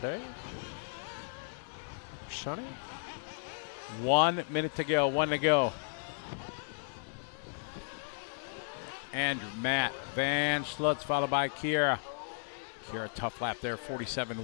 Sonny? 1 minute to go. 1 to go. Andrew, Matt, Van Schlutz, followed by Kiara. Kiara, tough lap there,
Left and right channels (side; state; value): right; silent; digital silence